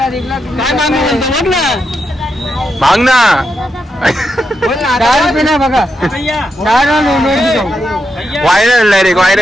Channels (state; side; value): normal; both; correlation 0.84